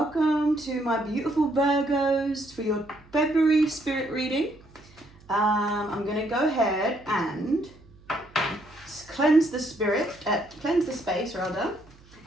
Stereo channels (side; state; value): right; noise; hum, 26 dB below the sound